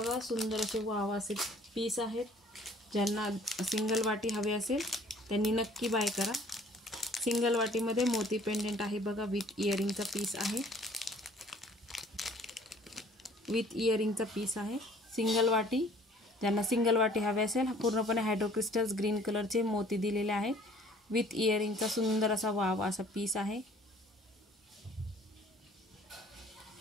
सुंदर असे वाव असे पीस आहेत. ज्यांना सिंगल वाटी हवे असेल त्यांनी नक्की बाय करा. सिंगल वाटीमध्ये मोती पेंडेंट आहे बघा, विथ इयरिंगचा पीस आहे. विथ इयरिंगचा पीस आहे. सिंगल वाटी, ज्यांना सिंगल वाटी हवे असेल, पूर्णपणे हायड्रोक्रिस्टल्स ग्रीन कलरचे मोती दिलेले आहेत. विथ इयरिंगचा सुंदर असा वाव असा पीस आहे.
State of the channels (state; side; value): normal; both; correlation 0.54